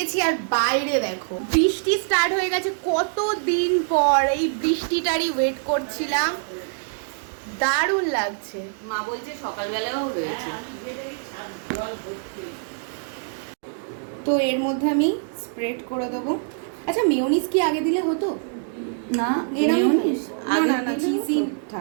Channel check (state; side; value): silent; left; digital silence